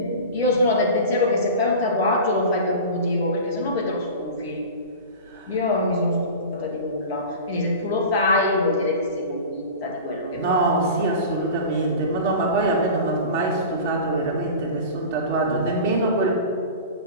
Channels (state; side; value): inverted; both; correlation -0.34